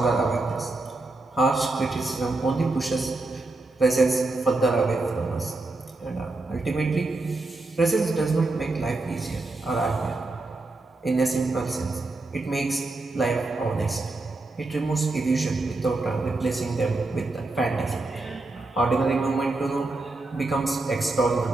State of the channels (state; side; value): quieter; left; 3.1 dB